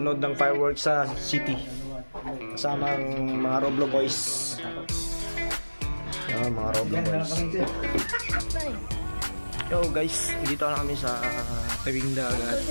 ng fireworks sa city. Kasama ang mga Roblaw boys. Mga Roblaw boys. Yo guys, dito na kami sa tabing dagat.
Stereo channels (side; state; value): both; inverted; correlation -1.00